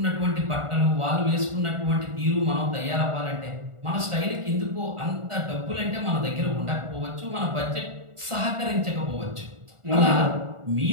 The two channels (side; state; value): left; late; 1.4 ms